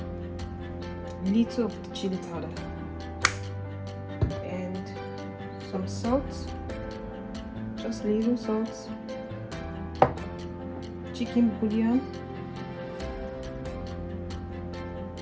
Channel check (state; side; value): identical; both; correlation 1.00